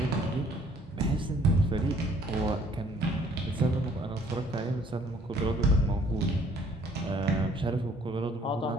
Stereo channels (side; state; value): both; normal; correlation 0.60